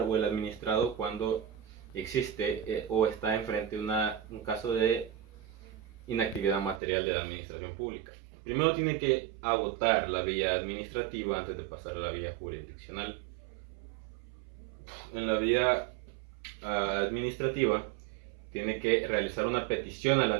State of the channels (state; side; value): drops out; left; at 6.8 s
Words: o el administrado cuando existe o está enfrente de un caso de inactividad material de la administración pública? Primero tiene que agotar la vía administrativa antes de pasar a la vía jurisdiccional. En la vía administrativa tiene que realizar una petición a la